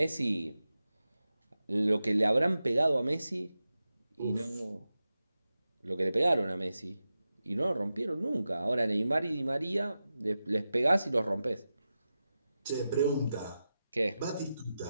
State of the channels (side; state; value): both; inverted; correlation -0.92